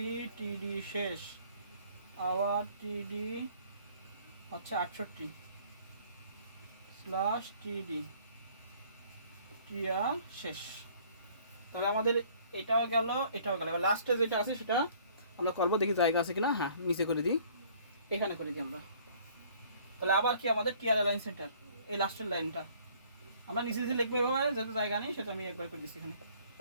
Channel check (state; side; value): inverted; both; correlation -0.57